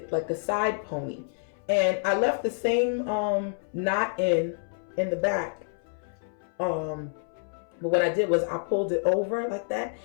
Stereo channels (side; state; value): right; silent; 59 dB below the other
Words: like a side pony. And I left the same knot in the back. But what I did was I pulled it over like that.